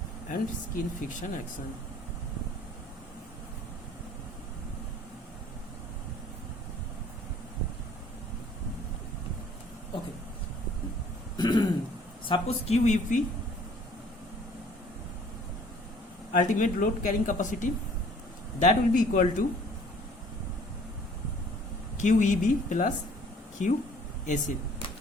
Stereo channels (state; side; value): normal; both; correlation 0.55